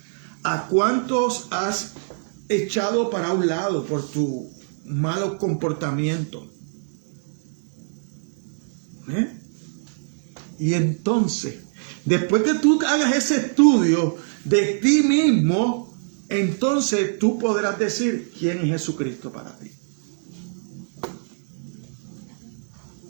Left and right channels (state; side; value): silent; left; digital silence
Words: ¿A cuántos has echado para un lado por tu malo comportamiento? Y entonces, después que tú hagas ese estudio de ti mismo, entonces tú podrás decir quién es Jesucristo para ti.